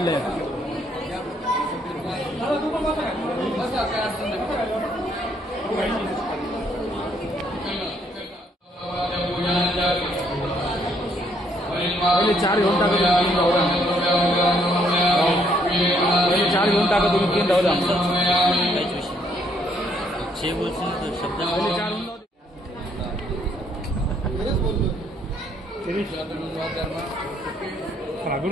पहिले 4 घेऊन टाका तुम्ही, 3 राहू द्या. पहिले 4 घेऊन टाका तुम्ही, 3 राहू द्या.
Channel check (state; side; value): normal; both; correlation 0.69